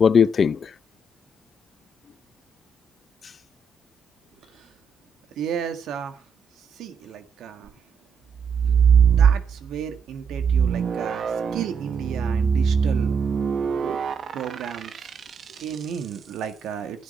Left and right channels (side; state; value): left; quieter; 3.6 dB